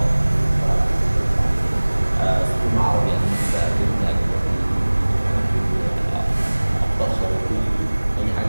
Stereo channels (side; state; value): both; inverted; correlation -1.00